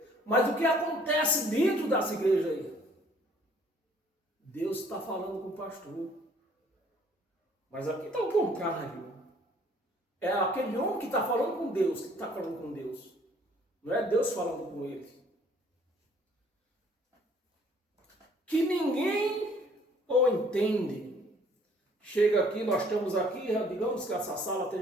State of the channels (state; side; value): normal; both; correlation 0.59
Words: Mas o que acontece dentro dessa igreja aí? Deus está falando com o pastor. Mas aqui está o contrário. É aquele homem que está falando com Deus, que está falando com Deus. Não é Deus falando com ele. Que ninguém o entende. Chega aqui, nós estamos aqui, digamos que essa sala